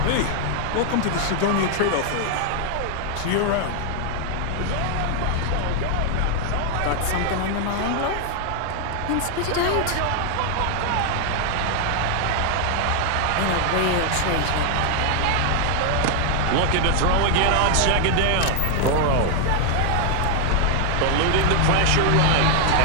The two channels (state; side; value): different; both; correlation 0.00